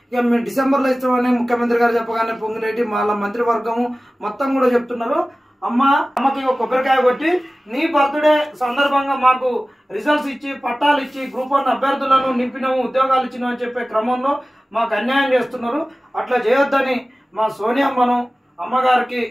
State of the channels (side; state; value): both; normal; correlation 0.97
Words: ఇక మేము డిసెంబర్లో ఇస్తామని ముఖ్యమంత్రి గారు చెప్పగానే పొంగిరెడ్డి వాళ్ళ మంత్రివర్గము మొత్తం కూడా చెప్తున్నారు. అమ్మకి ఒక కొబ్బరికాయ కొట్టి నీ బర్త్డే సందర్భంగా మాకు రిజల్ట్స్ ఇచ్చి పట్టాలు ఇచ్చి గ్రూప్ 1 అభ్యర్థులను నింపినాము, ఉద్యోగాలు ఇచ్చినాము అని చెప్పే క్రమంలో మాకు అన్యాయం చేస్తున్నారు. అట్లా చేయొద్దని మా సోనియమ్మను అమ్మగారికి